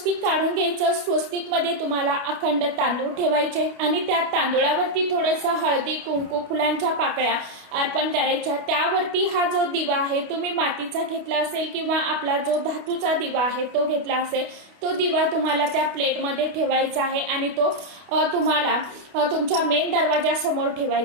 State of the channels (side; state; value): left; late; 28 ms